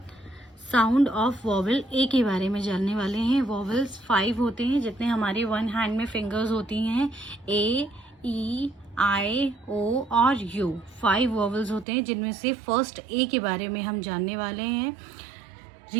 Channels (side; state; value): left; drops out; at 11.9 s